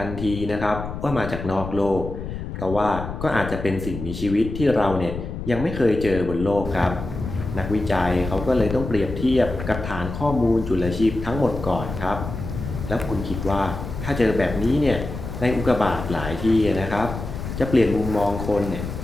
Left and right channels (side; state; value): left; noise; rumble, 7 dB below the sound